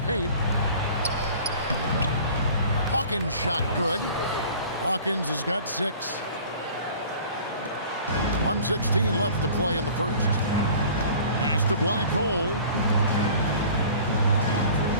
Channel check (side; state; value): both; inverted; correlation -0.46